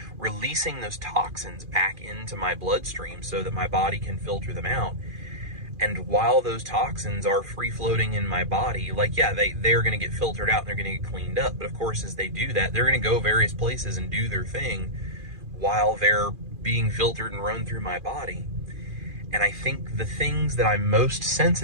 releasing those toxins back into my bloodstream so that my body can filter them out. And while those toxins are free-floating in my body, like, yeah, they're going to get filtered out and they're going to get cleaned up. But of course, as they do that, they're going to go various places and do their thing while they're being filtered and run through my body. And I think the things that I'm most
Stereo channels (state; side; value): late; left; 2.4 ms